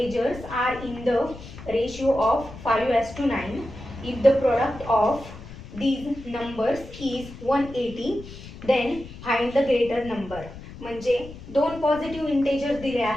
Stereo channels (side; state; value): left; noise; rumble, 15 dB below the sound